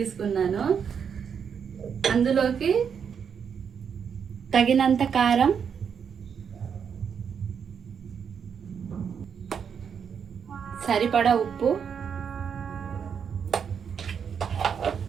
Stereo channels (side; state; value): left; quieter; 7.1 dB